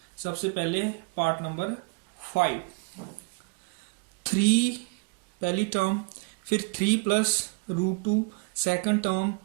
सबसे पहले पार्ट नंबर 5, 3 पहली टर्म, फिर 3 plus root 2 second term,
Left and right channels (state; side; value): quieter; left; 33.7 dB